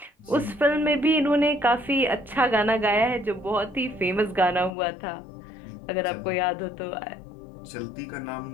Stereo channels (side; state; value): right; drops out; at 4.7 s